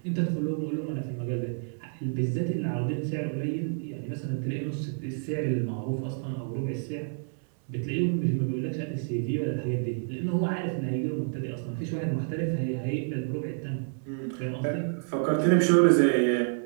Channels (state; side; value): silent; left; 59 dB below the other